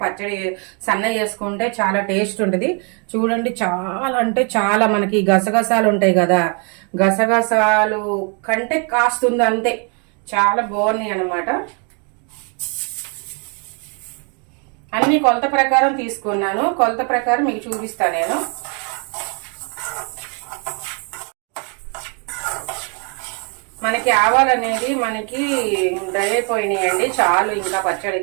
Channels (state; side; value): quieter; left; 36.7 dB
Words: పచ్చడి సన్న చేసుకుంటే చాలా టేస్ట్ ఉంటుంది. చూడండి, చాలా అంటే చాలా, మనకి గసగసాలు ఉంటాయి కదా, గసగసాలు కంటే కాస్తుంది అంతే, చాలా బాగున్నాయి అనమాట. అన్ని కొలత ప్రకారం తీసుకున్నాను. కొలత ప్రకారం మీకు చూపిస్తాను నేను. మనకి ఆవాలు అనేది మనకి డ్రై అయిపోయినాయండి, చాలు ఇంకా